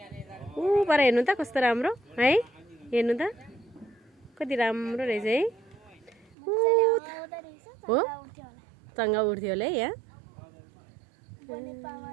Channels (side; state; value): left; drops out; at 6.4 s